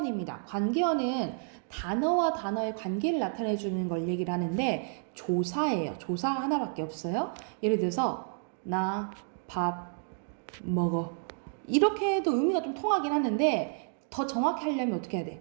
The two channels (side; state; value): left; silent; 57 dB below the other